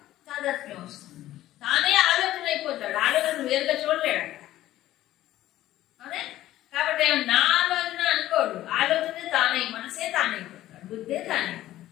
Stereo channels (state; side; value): quieter; right; 14.4 dB